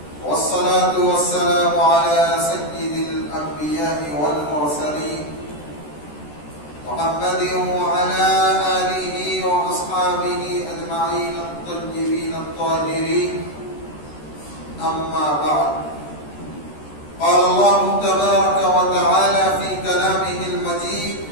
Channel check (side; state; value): right; late; 13 ms